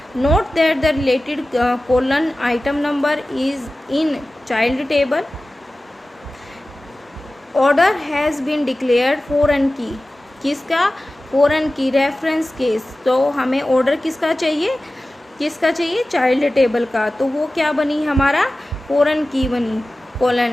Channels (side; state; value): both; normal; correlation 0.96